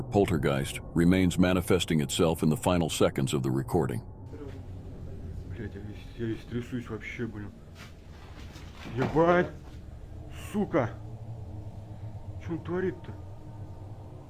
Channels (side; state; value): both; identical; correlation 1.00